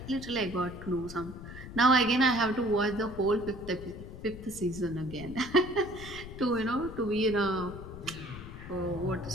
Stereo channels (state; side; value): noise; left; rumble, 12 dB below the sound